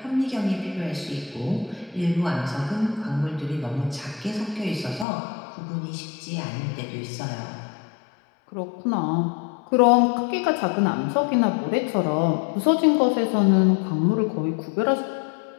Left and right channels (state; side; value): drops out; right; at 5.1 s